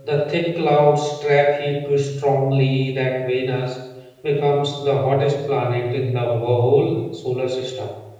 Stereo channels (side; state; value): both; identical; correlation 1.00